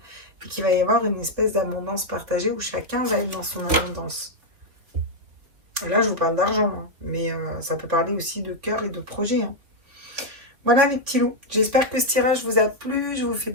Et qu'il va y avoir une espèce d'abondance partagée où chacun va être dans son abondance. Là, je vous parle d'argent, hein, mais ça peut parler aussi de cœur et de projet. Hein. Voilà les petits loups. J'espère que ce tirage vous a plu. Je vous fais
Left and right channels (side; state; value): left; late; 3.4 ms